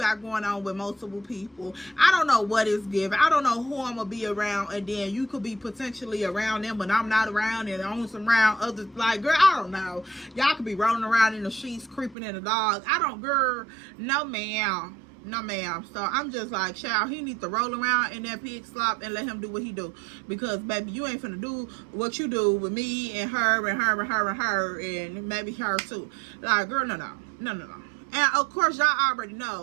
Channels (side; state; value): left; drops out; at 12.2 s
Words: going on with multiple people. I don't know what is given. I don't know who I'm gonna be around, and then you could be potentially around them, but I'm not around, and on some around others. Like, girl, I don't know. Y'all could be rolling around in the sheets, creeping in the dog. I don't, girl. No, ma'am. No, ma'am. So I'm just like, child, he needs to roll around in that pig slop and let him do what he do. Because, baby, you ain't finna do what you do with me and her and her and her and her and maybe her too. Like, girl, no. And, of course, y'all already